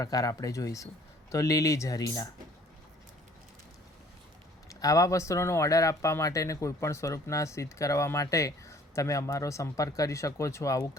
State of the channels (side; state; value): both; normal; correlation 0.56